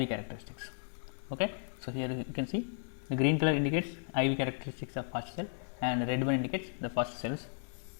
characteristics. Okay, so here you can see the green color indicates IV characteristics of first cell and red one indicates the first cells.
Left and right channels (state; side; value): silent; right; digital silence